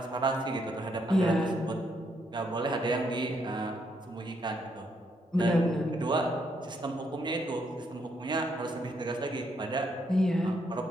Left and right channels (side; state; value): both; normal; correlation 0.75